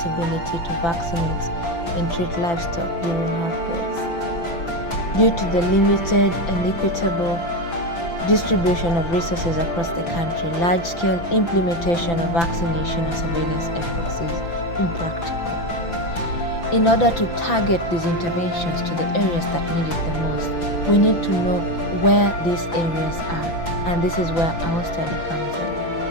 to vaccinate and treat livestock during outbreaks. Due to the limited and equitable distribution of resources across the country, large-scale implementation of vaccination and surveillance efforts is impractical. In order to target these interventions to the areas that need it the most, we need to know where these areas are, and this is where our study comes in.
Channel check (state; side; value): late; right; 5.9 ms